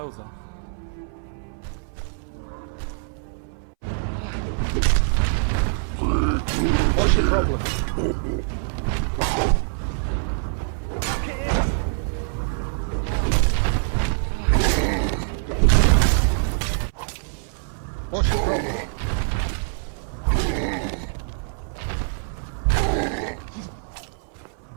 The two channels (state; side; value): silent; left; 60 dB below the other